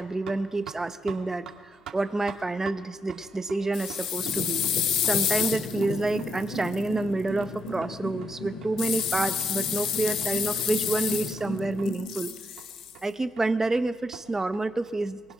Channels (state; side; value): normal; both; correlation 0.80